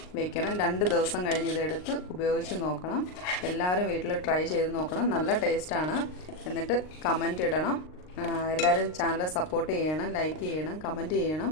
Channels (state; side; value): late; right; 39 ms